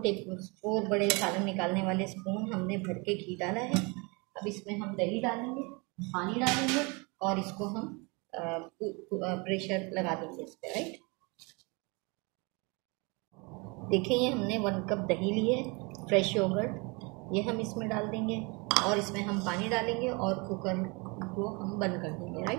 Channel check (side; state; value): left; quieter; 29.3 dB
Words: बड़े सालन निकालने वाले स्पून हमने भर के घी डाला है। अब इसमें हम दही डालेंगे, पानी डालेंगे और इसको हम प्रेशर लगा देंगे इस पर, राइट। देखिए ये हमने 1 कप दही ली है, फ्रेश योगर्ट, ये हम इसमें डाल देंगे। और इसमें हम पानी डालेंगे और कुकर को हम बंद कर देंगे,